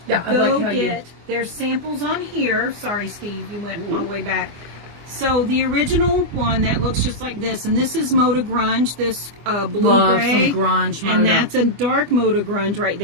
Yeah, I Go like how you- get. There's samples on here. Sorry, Steve, you went all the way back. So the original one that looks just like this, and this is Moda Grunge, this blue Love gray, some grunge and Moda. that's a dark Moda Grunge right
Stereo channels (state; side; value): late; left; 24 ms